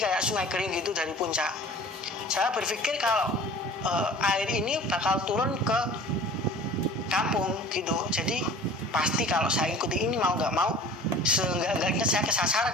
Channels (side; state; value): both; normal; correlation 0.44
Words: sungai kering gitu dari puncak. Saya berpikir kalau air ini bakal turun ke kampung gitu. Jadi pasti kalau saya ikuti ini mau nggak mau seenggak-enggaknya saya